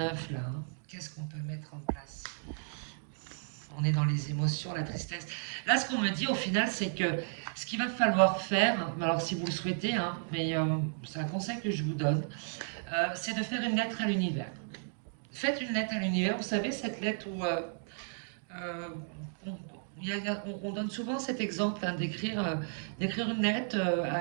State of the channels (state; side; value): silent; left; digital silence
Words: Hein. Qu'est-ce qu'on peut mettre en place? On est dans les émotions, la tristesse. Là, ce qu'on me dit au final, c'est que ce qu'il va falloir faire, alors si vous le souhaitez, hein, mais c'est un conseil que je vous donne, c'est de faire une lettre à l'univers. Faites une lettre à l'univers, vous savez, cette lettre où euh, on, on donne souvent cet exemple hein, d'écrire une lettre